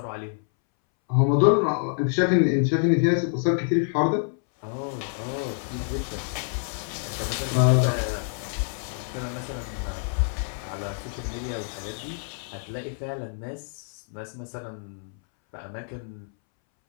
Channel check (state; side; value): silent; right; 60 dB below the other